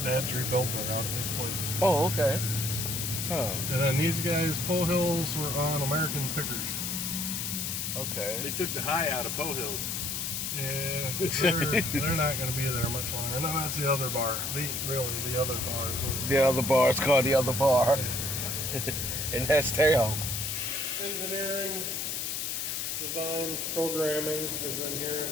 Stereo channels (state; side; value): noise; left; hiss, 2 dB below the sound